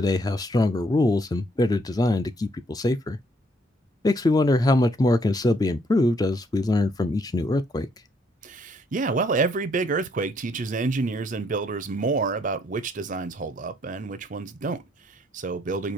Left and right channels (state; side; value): normal; both; correlation 0.69